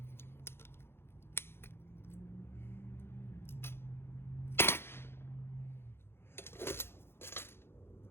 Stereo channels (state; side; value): late; right; 0.11 ms